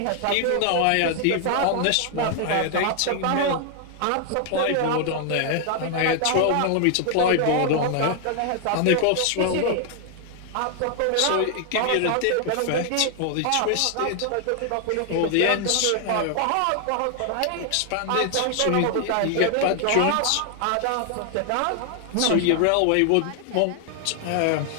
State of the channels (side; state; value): both; different; correlation 0.00